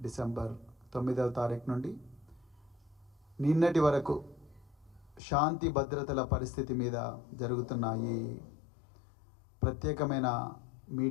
డిసెంబర్ 9వ తారీఖు నుండి నిన్నటి వరకు శాంతి భద్రతల పరిస్థితి మీద జరుగుతున్న ఈ ప్రత్యేకమైన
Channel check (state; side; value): drops out; right; at 5.2 s